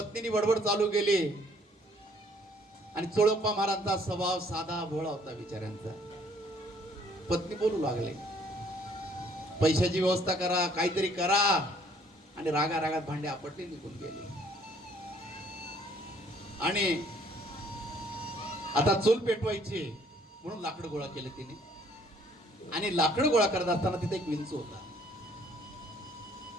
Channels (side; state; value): both; normal; correlation 0.61